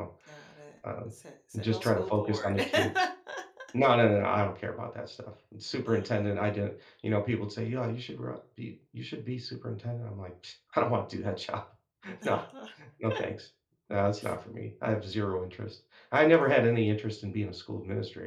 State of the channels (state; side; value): identical; both; correlation 1.00